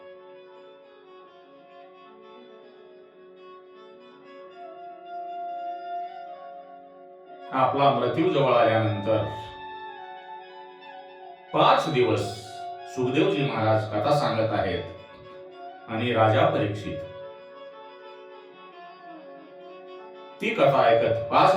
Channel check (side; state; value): both; identical; correlation 1.00